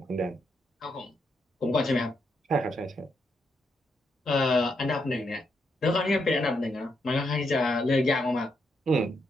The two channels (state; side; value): normal; both; correlation 0.80